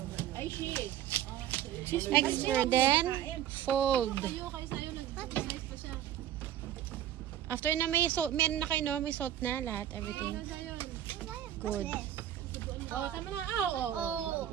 Ay, she is. Expert. Then, fold. Kayo sa'yo, nag-size pa siya. After na may salt, meron na kayo no? May salt na lahat, everything. Good. Oh, tama na. Oh.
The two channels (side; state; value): left; quieter; 11.4 dB